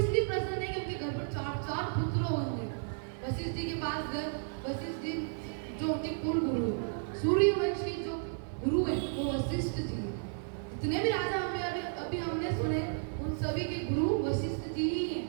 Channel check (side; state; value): left; silent; 56 dB below the other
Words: प्रसन्न है कि उनके घर पर 4 पुत्र होंगे। वशिष्ठ जी के पास गए। वशिष्ठ जी जो उनके कुल गुरु है, सूर्यवंशी जो गुरु है वो वशिष्ठ जी। जितने भी राजा हमें अभी हमने सुने उन सभी के गुरु वशिष्ठ जी ही हैं।